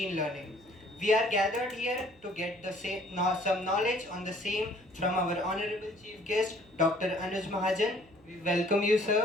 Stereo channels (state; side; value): noise; right; hum, 28 dB below the sound